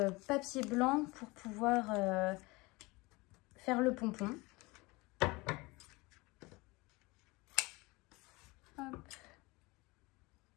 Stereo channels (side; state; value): right; quieter; 23.7 dB